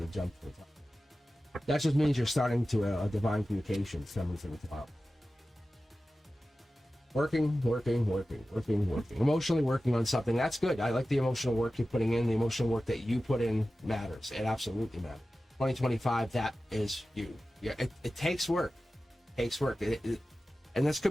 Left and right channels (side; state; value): both; normal; correlation 0.95